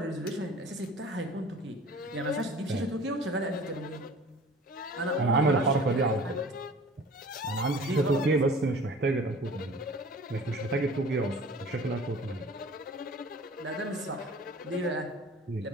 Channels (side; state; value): both; normal; correlation 0.45